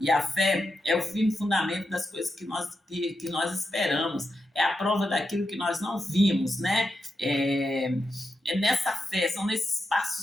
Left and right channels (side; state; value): both; normal; correlation 0.87